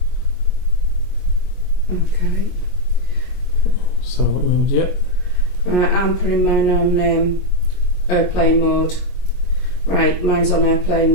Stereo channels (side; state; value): right; late; 22 ms